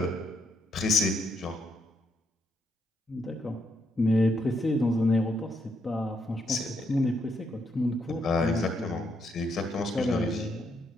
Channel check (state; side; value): normal; both; correlation 0.77